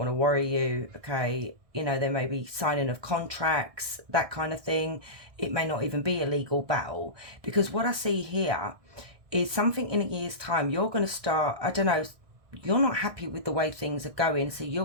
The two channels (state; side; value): late; left; 1.6 ms